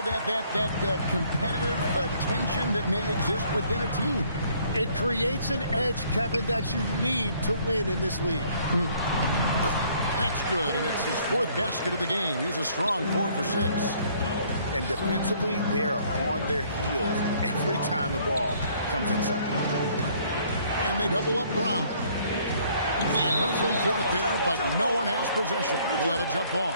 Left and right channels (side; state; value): both; inverted; correlation -0.62